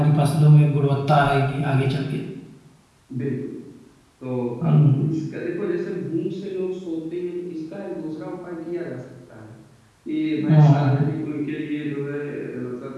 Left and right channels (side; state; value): both; identical; correlation 1.00